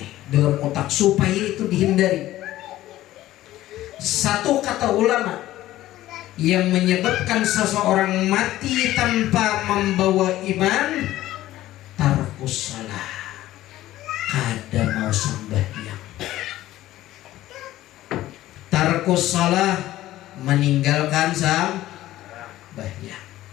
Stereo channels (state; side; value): quieter; right; 15.0 dB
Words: dalam otak supaya itu dihindari. Satu kata ulama yang menyebabkan seseorang mati tanpa membawa iman, tarkus salah, kada mau sembahyang. Tarkus salah, meninggalkan sembahyang